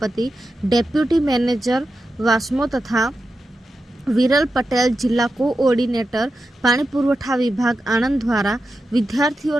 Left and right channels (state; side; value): normal; both; correlation 0.90